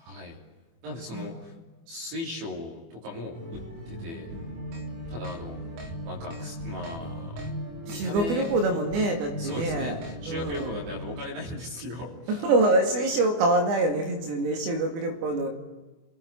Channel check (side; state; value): left; late; 24 ms